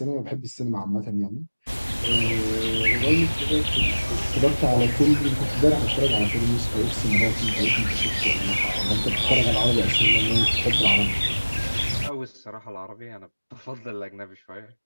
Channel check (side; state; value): both; inverted; correlation -1.00